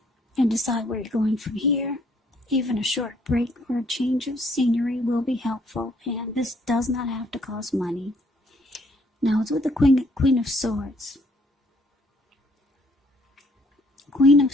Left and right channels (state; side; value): normal; both; correlation 0.65